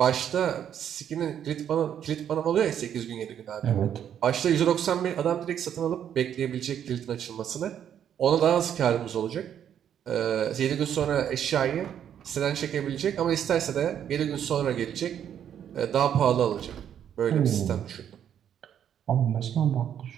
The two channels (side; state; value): left; quieter; 9.4 dB